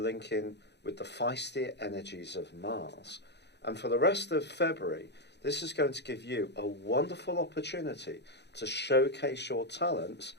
with the feisty energies of Mars. And for the rest of February, this is going to give you a wonderful opportunity to showcase your talents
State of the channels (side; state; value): right; late; 0.50 ms